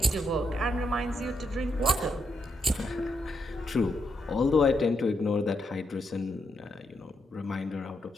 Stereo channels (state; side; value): normal; both; correlation 0.80